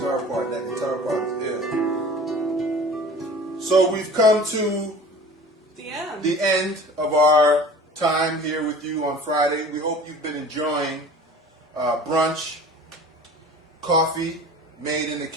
part. That guitar part is ill. So we've come to the end of our time here with you on Friday. We hope you've been enjoying brunch, coffee made in the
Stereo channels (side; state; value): both; normal; correlation 0.42